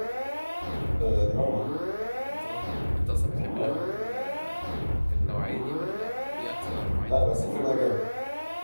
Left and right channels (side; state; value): both; inverted; correlation -1.00